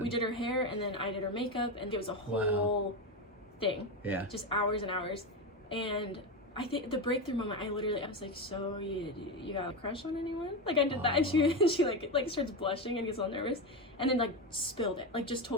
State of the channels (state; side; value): normal; both; correlation 0.15